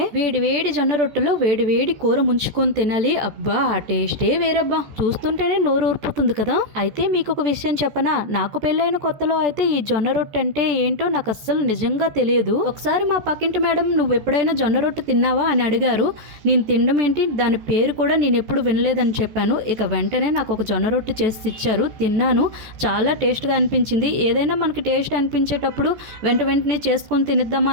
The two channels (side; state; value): left; late; 14 ms